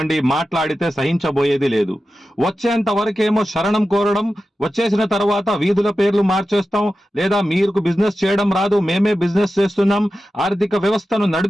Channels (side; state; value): both; normal; correlation 0.93